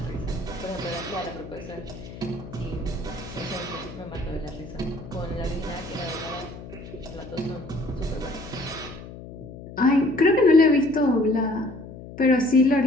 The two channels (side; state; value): left; noise; hum, 14 dB below the sound